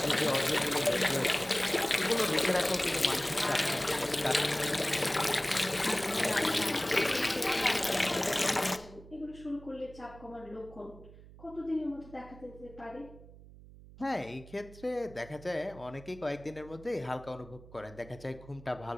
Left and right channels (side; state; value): right; noise; hum, 19 dB below the sound